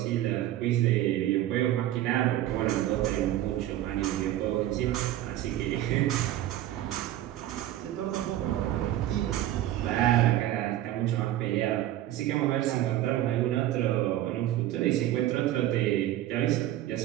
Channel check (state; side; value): quieter; left; 13.5 dB